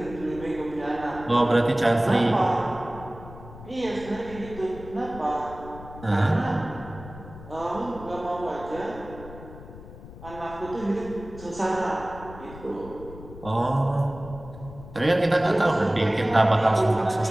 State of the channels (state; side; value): noise; left; rumble, 15 dB below the sound